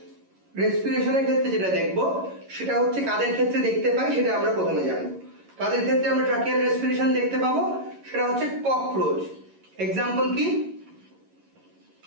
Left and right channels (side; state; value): left; late; 11 ms